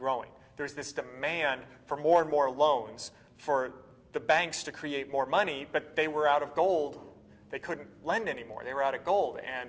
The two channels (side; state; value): both; identical; correlation 1.00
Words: There's this demand for more and more loans for the banks to create more money, but they were out of gold. They couldn't lend anymore. They were out of gold.